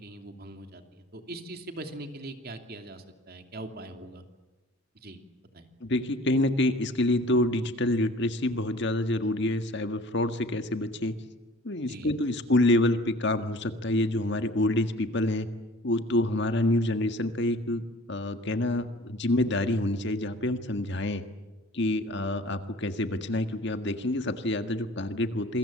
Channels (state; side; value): normal; both; correlation 0.48